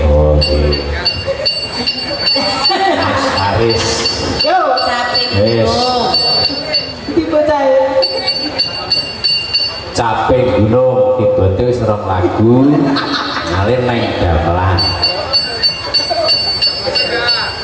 Oke. Mas Aris. Yo, Caping Yes. Gunung. Caping Gunung dibantu wis rong lagu ngalir neng gamelan.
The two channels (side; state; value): both; identical; correlation 1.00